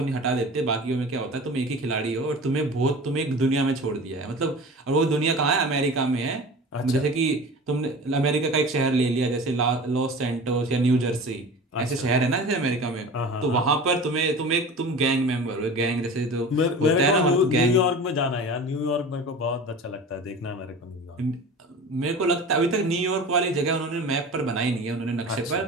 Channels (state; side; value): normal; both; correlation 0.36